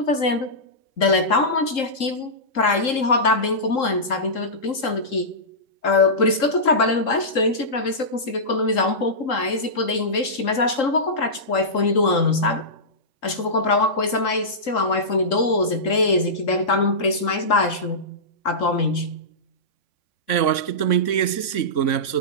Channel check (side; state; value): right; late; 3.7 ms